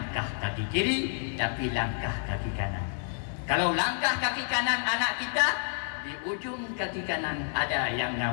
kaki kiri, tapi langkah kaki kanan. Kalau langkah kaki kanan anak kita, di ujung kaki kanan ada yang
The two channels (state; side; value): silent; right; 57 dB below the other